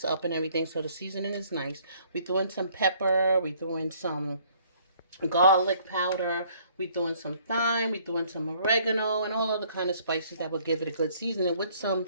up and everything, so the seasoning is nice. We threw in some pepper, we threw in some garlic powder, we threw in some thyme, we threw in some oregano, and all other kind of spices that will give it a good seasoning with some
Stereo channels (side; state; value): both; inverted; correlation -0.61